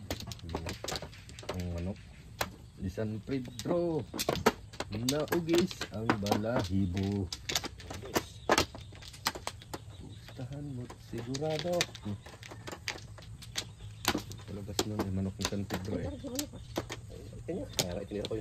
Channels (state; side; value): identical; both; correlation 1.00